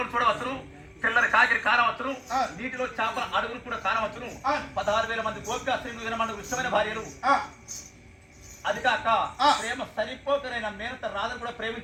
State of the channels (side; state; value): both; identical; correlation 1.00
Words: చూడవచ్చును, తెల్లని కాకిరి కానవచ్చును, నీటిలో చేపల అడుగులు కూడా కానవచ్చును. 16,000 మంది గోపికా స్త్రీలు 20 మంది ఇష్టమైన భార్యలు. అది కాక ప్రేమ సరిపోకరైన మేనత రాధను కూడా